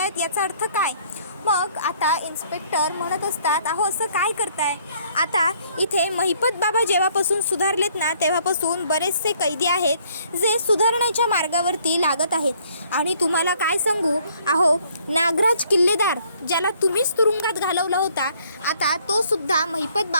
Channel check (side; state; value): both; inverted; correlation -0.63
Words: याचा अर्थ काय. मग आता इन्स्पेक्टर म्हणत असतात अहो असं काय करताय. आता इथे महिपत बाबा जेव्हापासून सुधारलेत ना तेव्हापासून बरेचसे कैदी आहेत जे सुधारण्याच्या मार्गावरती लागत आहेत. आणि तुम्हाला काय सांगू, अहो नागराज किल्लेदार ज्याला तुम्हीच तुरुंगात घालवला होता, आता तो सुद्धा महिपत